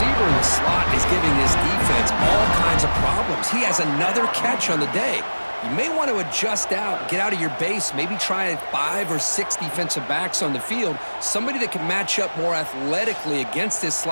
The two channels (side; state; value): both; inverted; correlation -1.00